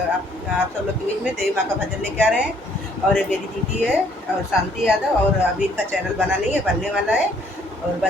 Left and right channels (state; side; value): normal; both; correlation 0.63